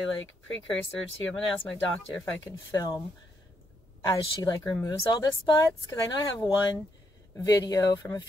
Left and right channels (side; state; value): both; normal; correlation 0.77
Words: precursor to, I'm going to ask my doctor if I can film as she removes all the spots. Cause I know I have one video from a